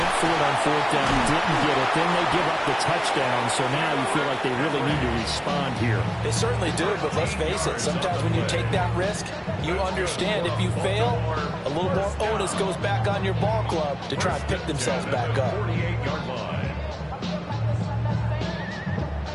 for it on fourth down, didn't get it. Then they give up the touchdown, so now you feel like they really need to respond here. They certainly do, but let's face it, sometimes when you take that risk, you understand if you fail, a little more onus goes back on your ball club to try and pick themselves back up. 48-yard line.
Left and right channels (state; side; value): identical; both; correlation 1.00